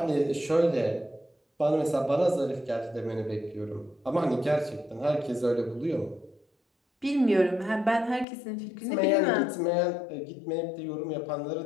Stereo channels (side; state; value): right; drops out; at 8.2 s